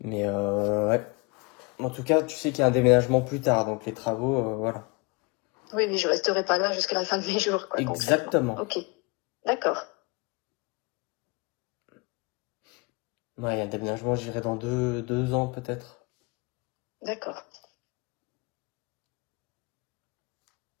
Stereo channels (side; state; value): right; quieter; 28.2 dB